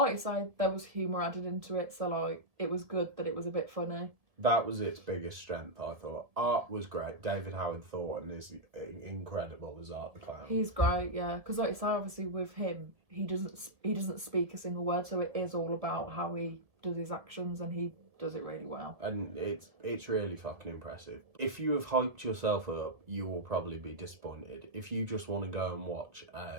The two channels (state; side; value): late; left; 1.7 ms